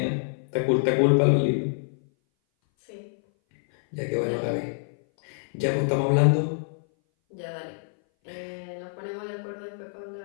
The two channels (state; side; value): silent; right; 58 dB below the other